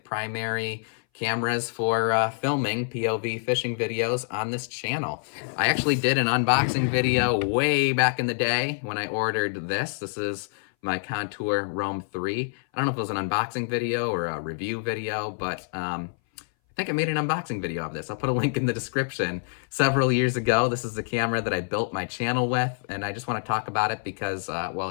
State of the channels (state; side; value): silent; right; 59 dB below the other